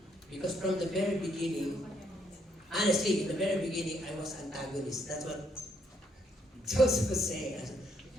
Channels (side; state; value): both; normal; correlation 0.72